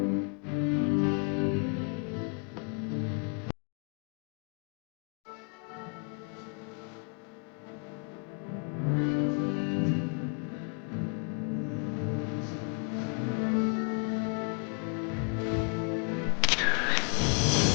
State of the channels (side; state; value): right; quieter; 37.9 dB